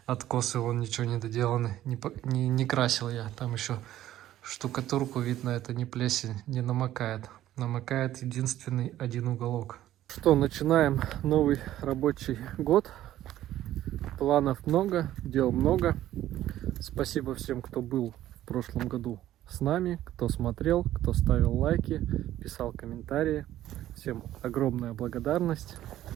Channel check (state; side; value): quieter; left; 13.3 dB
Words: откосы, вон ничего не доделаны. Не красил я. Там еще штукатурку видно, это не плесень, не намокает. Намокает единственный один уголок. Что, начинаем новый рабочий год. Планов много, дел много. Спасибо всем, кто был в прошлом году с нами, кто смотрел, кто ставил лайки, писал комментарии. Всем огромная благодарность.